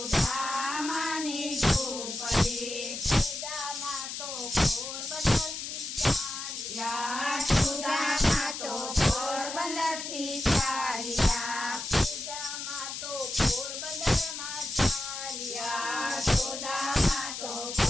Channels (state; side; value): noise; left; hiss, 6 dB below the sound